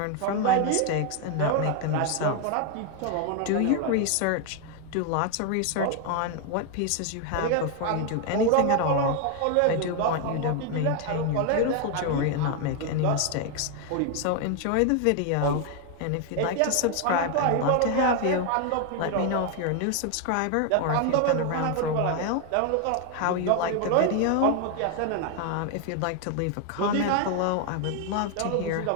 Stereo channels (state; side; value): different; both; correlation 0.01